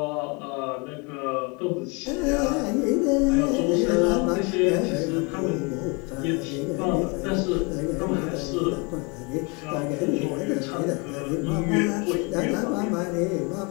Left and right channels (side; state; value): right; quieter; 30.7 dB